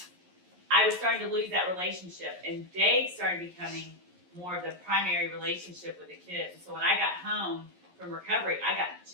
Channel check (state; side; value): late; left; 11 ms